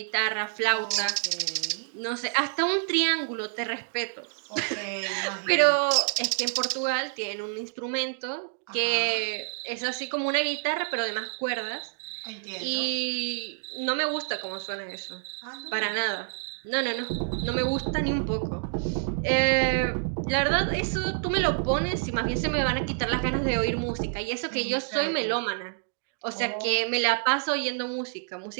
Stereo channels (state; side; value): silent; left; digital silence